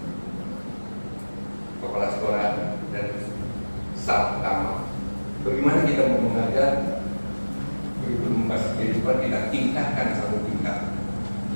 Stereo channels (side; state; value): both; inverted; correlation -1.00